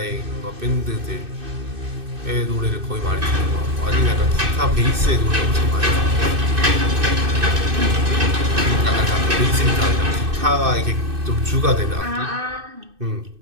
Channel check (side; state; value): left; late; 2.6 ms